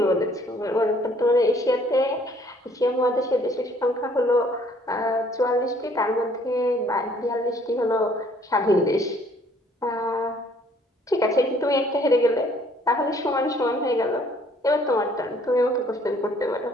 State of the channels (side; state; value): both; normal; correlation 0.61